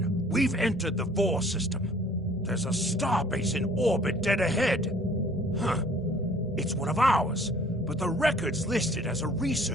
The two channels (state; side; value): normal; both; correlation 0.54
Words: we've entered the Vor system. There's a starbase in orbit dead ahead. Huh. It's one of ours, but the record's listed as a